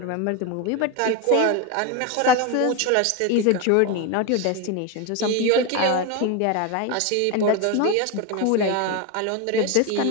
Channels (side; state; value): both; different; correlation 0.03